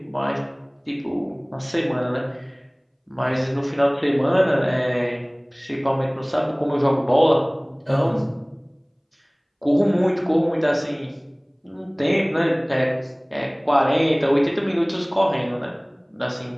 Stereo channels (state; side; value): identical; both; correlation 1.00